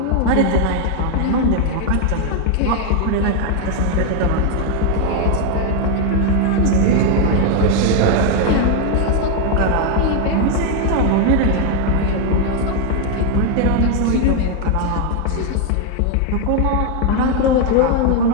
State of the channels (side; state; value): both; different; correlation 0.01